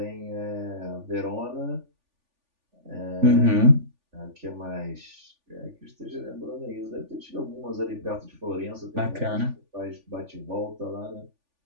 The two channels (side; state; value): left; late; 3.4 ms